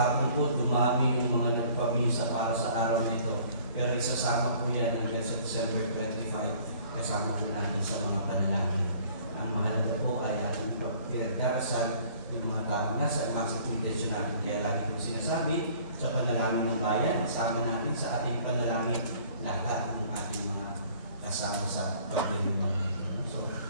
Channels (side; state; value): both; inverted; correlation -0.54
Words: po, dumami yung mga nagpamisa para sa araw nito. Pero isasama po yan hanggang sa December 25, kasama po natin sa mga panalangin. Ang mahalaga po ay ang pinagdarasal yung mga taong nasa maximum intention natin. Kaya lagi po sinasabi sa panalangin ng bayan, kasama natin sa ating panalangin lahat ng ating mga kasama sa pagdiriwang nito. So,